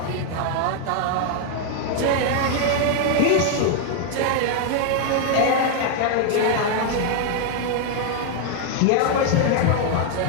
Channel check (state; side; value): different; both; correlation 0.00